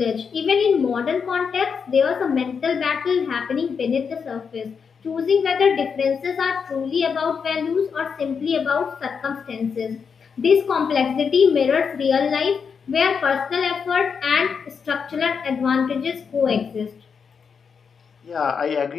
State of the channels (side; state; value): right; quieter; 6.2 dB